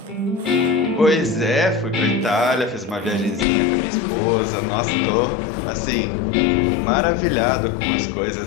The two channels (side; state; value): right; drops out; at 3.5 s